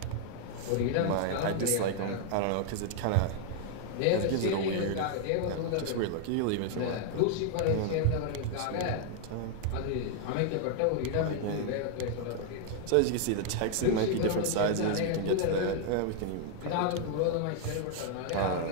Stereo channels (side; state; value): both; different; correlation 0.00